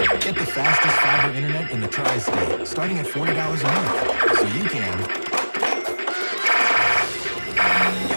Get the fastest fiber internet in the tri-state, starting at $40 a month, so you can.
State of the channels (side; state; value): both; inverted; correlation -1.00